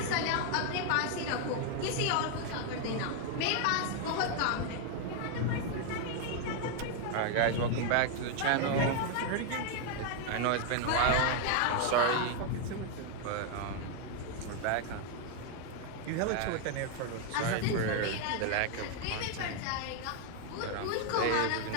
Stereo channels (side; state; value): both; different; correlation 0.00